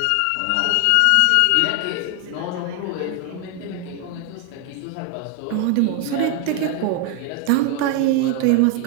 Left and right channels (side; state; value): both; different; correlation 0.00